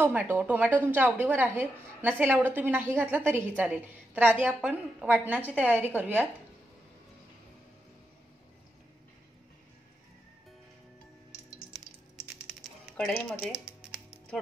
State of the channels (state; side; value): normal; both; correlation 0.85